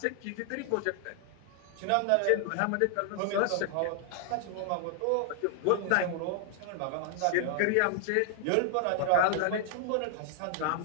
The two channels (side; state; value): both; different; correlation 0.00